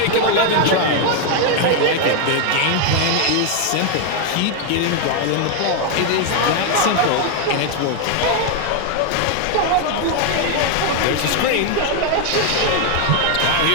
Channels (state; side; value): different; both; correlation 0.01